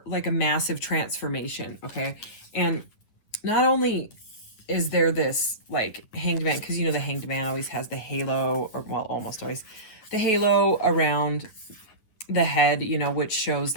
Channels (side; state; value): right; late; 9.5 ms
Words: like a massive transformation, okay? And not only is there this like Hanged Man, because, you know, the Hanged Man always has the halo, or well, almost always, the halo around the head, you know, which shows